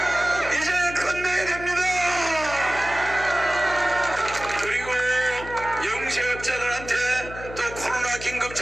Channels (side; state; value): left; noise; hum, 13 dB below the sound